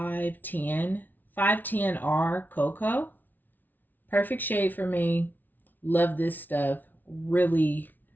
510R Cocoa. Perfect shade for me. Love this stuff. Really,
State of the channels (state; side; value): late; right; 0.085 ms